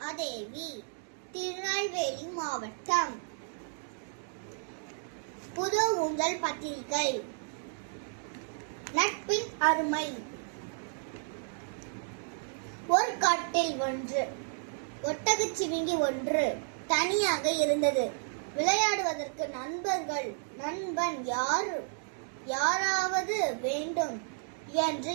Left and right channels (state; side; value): silent; left; digital silence